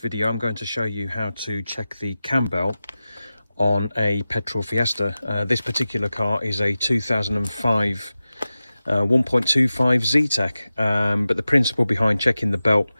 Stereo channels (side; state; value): both; inverted; correlation -0.94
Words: I'm going to show you how to check the cam belt on a petrol Fiesta. This particular car is a 2005 1.25 Z-Tech, but the principle behind checking the belt